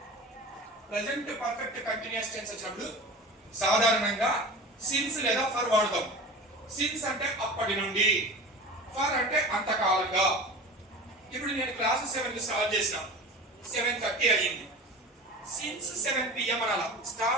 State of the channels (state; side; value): normal; both; correlation 0.35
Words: Present perfect continuous tense వచ్చినప్పుడు సాధారణంగా since లేదా for వాడతాం. since అంటే అప్పటి నుండి, for అంటే అంతకాలంగా. ఇప్పుడు నేను క్లాస్ 7 కి స్టార్ట్ చేసిన 7:30 అయ్యింది. since 7 PM అనాల.